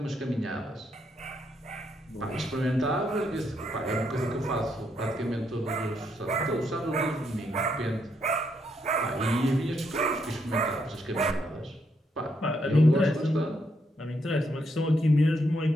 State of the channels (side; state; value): both; normal; correlation 0.77